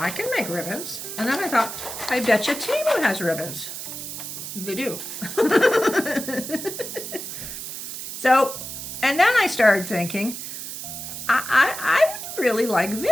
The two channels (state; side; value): noise; right; hiss, 8 dB below the sound